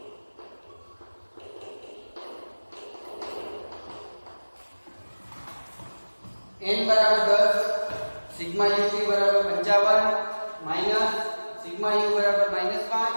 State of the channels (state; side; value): inverted; both; correlation -1.00